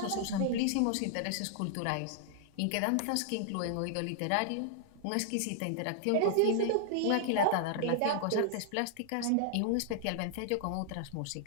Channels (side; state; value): both; different; correlation 0.00